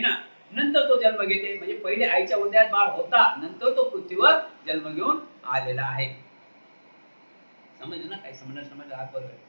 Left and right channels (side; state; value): both; inverted; correlation -1.00